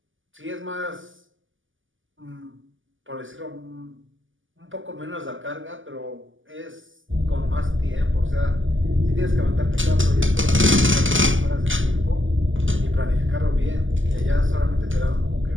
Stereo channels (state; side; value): late; left; 0.57 ms